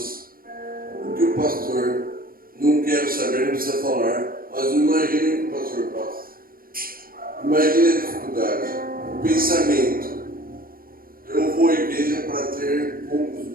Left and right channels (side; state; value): left; late; 0.42 ms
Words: Porque o pastor, não quero saber, não precisa falar, mas imagine o que o pastor passa. Imagine a dificuldade dificuldade. O pensamento. Eu vou à igreja para ter poucos